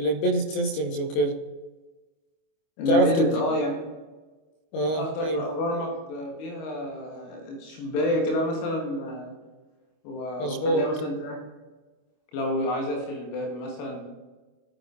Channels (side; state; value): right; late; 25 ms